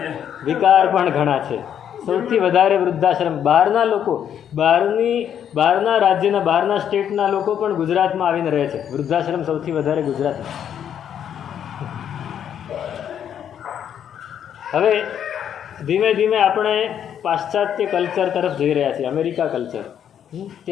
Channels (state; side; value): quieter; right; 9.2 dB